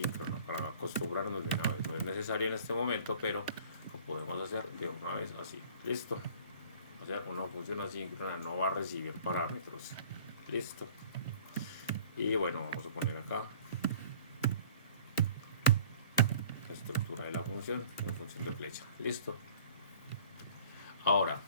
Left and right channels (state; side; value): inverted; both; correlation -0.50